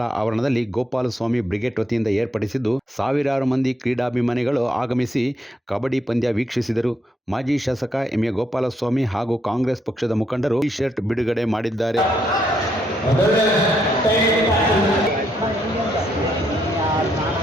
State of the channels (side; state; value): both; normal; correlation 0.75